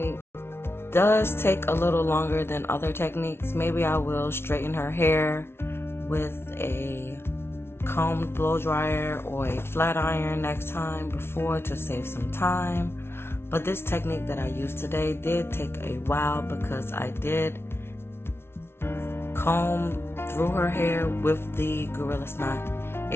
does take a little longer than other techniques. Maybe I will straighten her hair with a combed blow dryer or a flat iron next time before to save some time. But this technique that I used today did take a while because I did comb through her hair with the Gorilla Snot.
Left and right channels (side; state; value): right; late; 0.12 ms